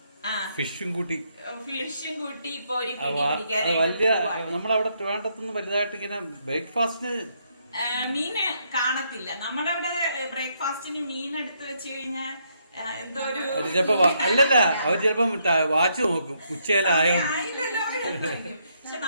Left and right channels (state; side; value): inverted; both; correlation -0.74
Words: ഫിഷും കൂട്ടി വലിയ നമ്മളവിടെ ട്രിവാൻഡ്രത്തൊന്നും വലുതായിട്ട് ഇങ്ങനെ ബ്രേക്ക്ഫാസ്റ്റിന് മീന് കാണത്തില്ല. നമ്മുടെ അവിടെ ബ്രേക്ക്ഫാസ്റ്റിന് മീൻ എടുത്ത് വെച്ച് കഴിഞ്ഞാൽ എന്തോ ഒരു ചിലപ്പോ അല്ലല്ല, അവർ ചിലപ്പോ വാച്ച് നോക്കും ഉച്ചയിലായോ. പക്ഷെ